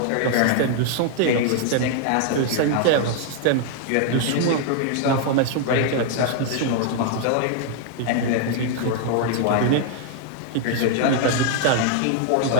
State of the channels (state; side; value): different; both; correlation 0.00